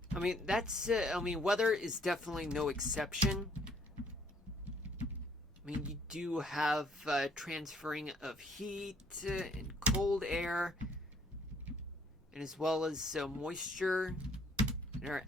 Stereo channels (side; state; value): both; normal; correlation 0.63